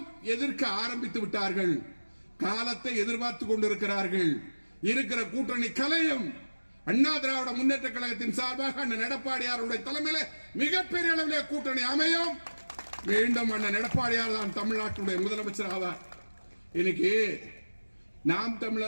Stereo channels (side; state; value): both; inverted; correlation -1.00